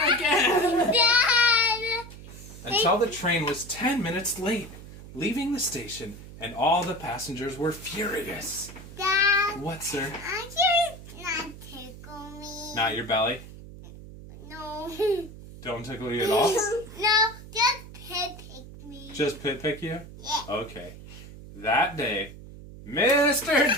again! Dad! Until the train was 10 minutes late, leaving the station, and all the passengers were furious. Dad! What, sir? I can not tickle me. Not your belly? No. Don't tickle you at all? No, just pick me. Just pick you? Yeah. Okay. That day, Mr.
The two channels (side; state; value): right; noise; hum, 15 dB below the sound